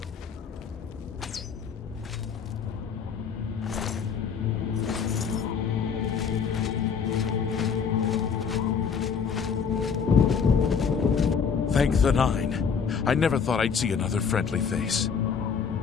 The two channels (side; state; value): right; quieter; 6.4 dB